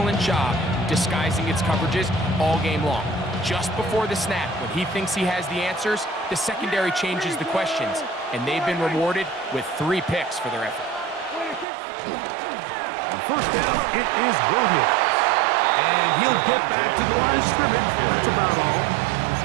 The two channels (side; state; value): left; drops out; at 11.7 s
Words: job disguising its coverages all game long. Just before the snap, when he thinks he has the answers, the secondary changes the questions, and they've been rewarded with 3 picks for their effort. On first down, it is Williams. And he'll get back to the line of scrimmage. That's about all.